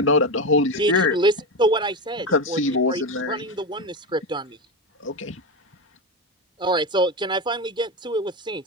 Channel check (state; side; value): normal; both; correlation 0.17